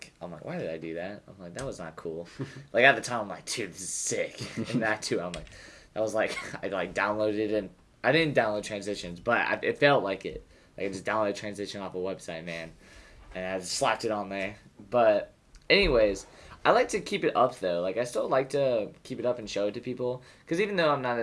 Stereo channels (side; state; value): both; identical; correlation 1.00